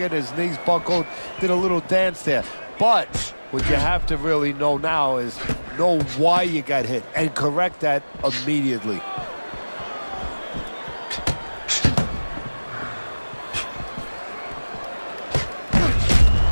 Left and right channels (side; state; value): both; inverted; correlation -1.00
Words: his knees buckled, did a little dance there. But what you have to really know now is know why you got hit and correct that immediately.